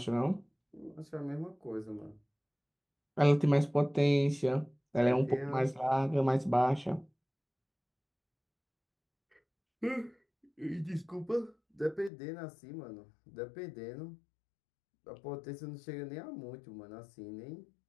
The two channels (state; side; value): drops out; right; at 12.1 s